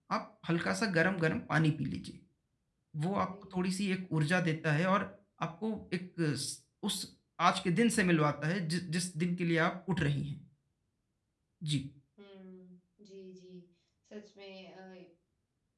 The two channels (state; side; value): identical; both; correlation 1.00